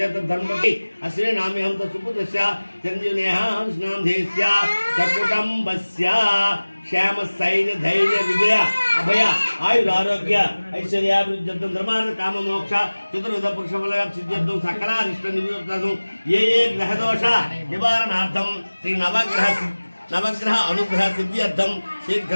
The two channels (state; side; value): inverted; both; correlation -1.00